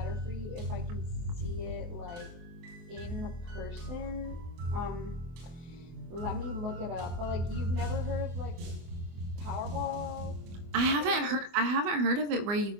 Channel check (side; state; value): left; late; 24 ms